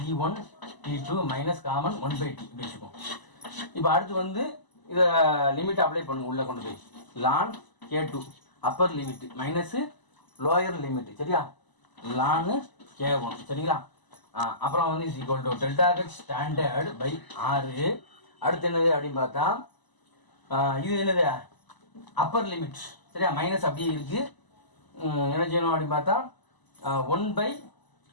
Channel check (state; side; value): late; right; 1.0 ms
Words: T2 minus common 1/T இப்படி வச்சுக்கோம். இப்போ அடுத்து வந்து இதை லிமிட் அப்ளை பண்ணுங்க, உள்ளே கொண்டு போய் ln k2 upper limit minus lower limit. சரியா? ln k1. சரிங்களா? அப்புறம் வந்து ∆h ஸ்டாண்டர்ட் பை 6. அடுத்து என்னது அப்படின்னு பார்த்தா இது என்னது அப்பர் லிமிட். சரியா? மைனஸ் அப்படியே இருக்குது. என்ன செய்யணும் அப்படின்னு பார்த்தா 1/